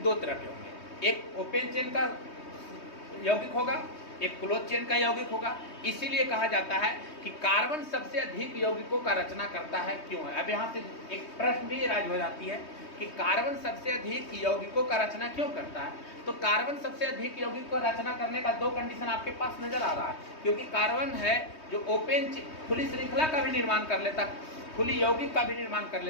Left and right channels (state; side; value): late; right; 3.2 ms